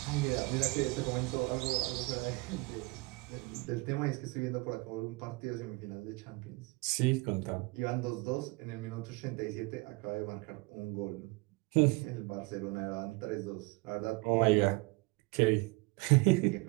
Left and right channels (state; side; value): quieter; left; 25.3 dB